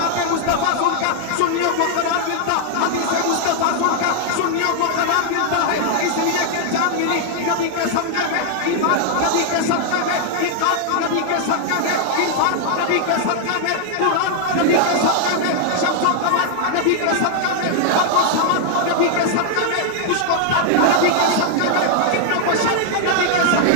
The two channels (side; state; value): both; different; correlation 0.00